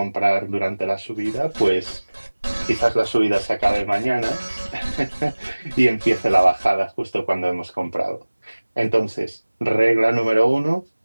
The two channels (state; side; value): inverted; both; correlation -1.00